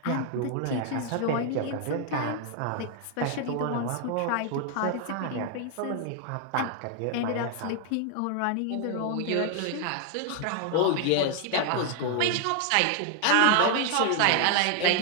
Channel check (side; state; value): both; different; correlation 0.00